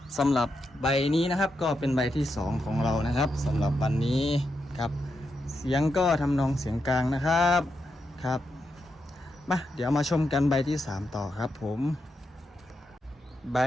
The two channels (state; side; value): normal; both; correlation 0.85